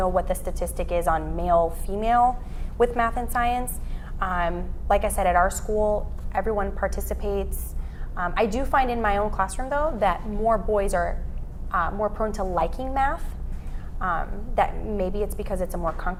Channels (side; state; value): both; identical; correlation 1.00